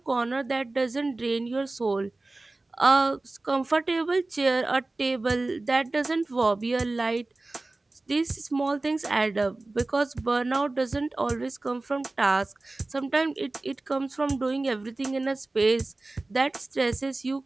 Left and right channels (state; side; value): quieter; left; 3.1 dB